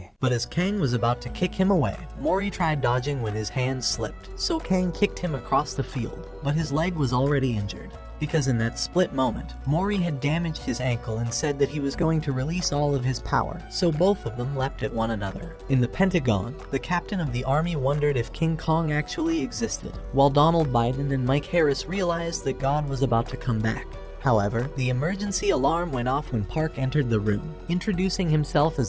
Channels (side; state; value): both; identical; correlation 1.00